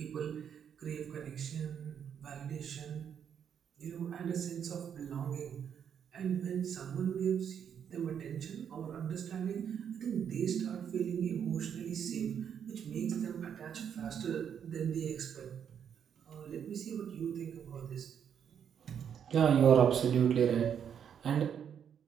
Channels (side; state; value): left; quieter; 8.2 dB